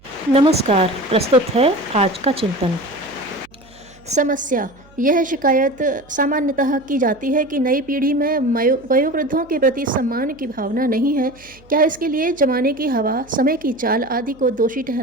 नमस्कार। प्रस्तुत है आज का चिंतन। समस्या। यह शिकायत सामान्यतः की जाती है कि नई पीढ़ी में वयोवृद्धों के प्रति सम्मान की भावना नहीं है। क्या इसके लिए जमाने की हवा, समय की चाल आदि को दोषी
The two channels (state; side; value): noise; right; hum, 27 dB below the sound